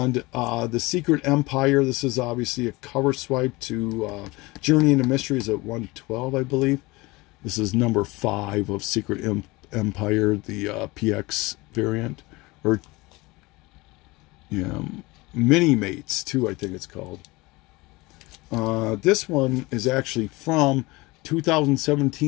the Secret Empire. This is obviously a cover swipe to Journey into Mysteries at 112, I believe. This is number 5 of Secret Empire, the PX variant. Or, yeah, Mini Mates too, I think it's called. This one is actually from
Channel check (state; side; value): quieter; right; 22.6 dB